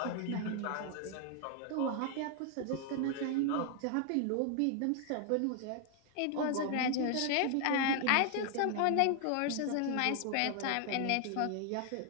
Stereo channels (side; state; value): both; different; correlation 0.00